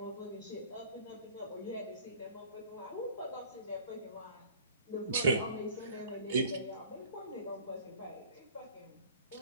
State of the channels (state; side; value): inverted; both; correlation -0.48